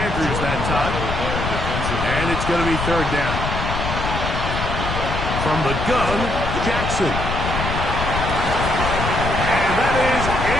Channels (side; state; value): left; noise; rumble, 3 dB below the sound